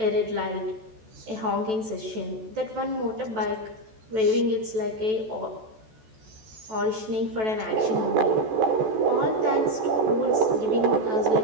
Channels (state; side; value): late; left; 14 ms